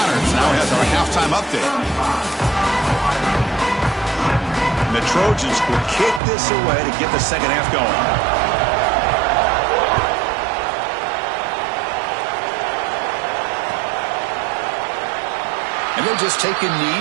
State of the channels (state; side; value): drops out; left; at 6.2 s